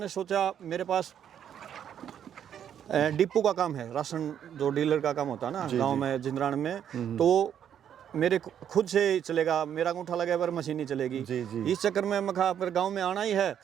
सोचा, मेरे पास डिपो का काम है, राशन जो डीलर का काम होता है ना गांव में जिंद्रान में, तो मेरे खुद से चलेगा, मेरा अंगूठा लगे पर मशीन नहीं चलेगी जी। इस चक्कर में मैं कहा फिर गांव में आना ही है,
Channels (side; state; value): left; quieter; 9.3 dB